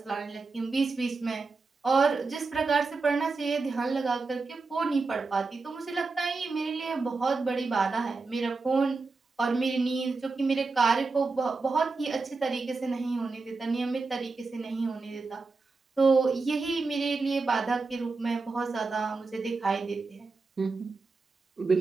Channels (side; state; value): left; quieter; 4.0 dB